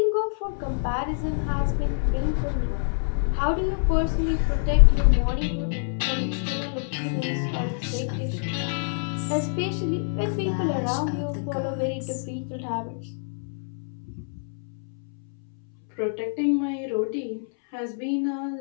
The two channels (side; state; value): right; silent; 61 dB below the other